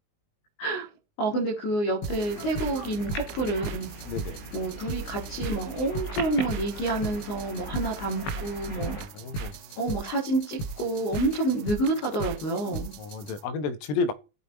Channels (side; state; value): right; late; 20 ms